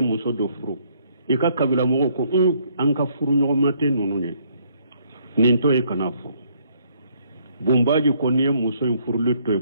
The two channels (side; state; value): both; inverted; correlation -0.67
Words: do furu ika kabila mogo ko an ka furu nyogomate nunu nye ninto e kana fo bumbaji ko niye muso in furu lito